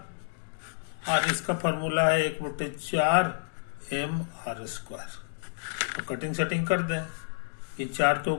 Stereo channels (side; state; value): right; silent; digital silence